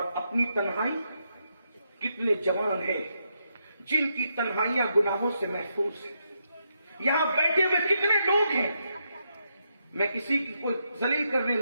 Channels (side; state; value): both; inverted; correlation -0.81